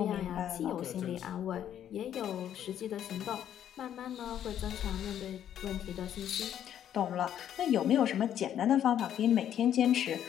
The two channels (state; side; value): quieter; right; 10.2 dB